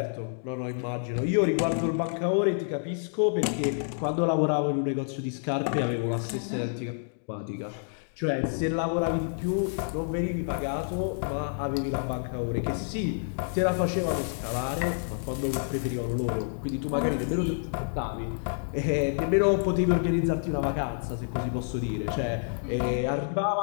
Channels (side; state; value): right; silent; digital silence